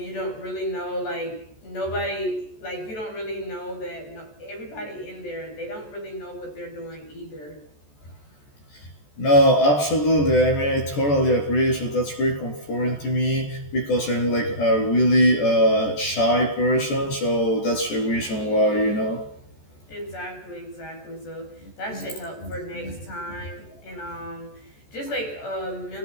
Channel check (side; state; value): right; late; 14 ms